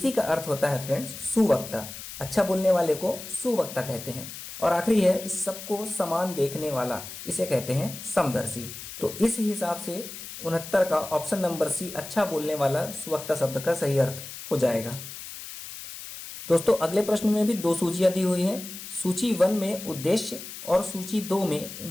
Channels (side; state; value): left; noise; hiss, 11 dB below the sound